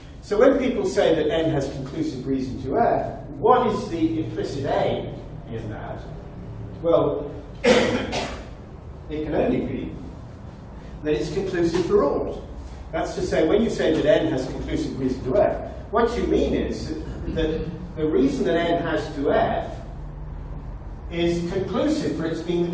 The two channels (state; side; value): identical; both; correlation 1.00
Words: So when people say that n has conclusive reason to f, what is the implicit aim in that? Well, it can only be that it's conclusive for ought. That's to say, when you say that n has conclusive reason to f, what you mean is that the reason that n has to f is conclusive for its being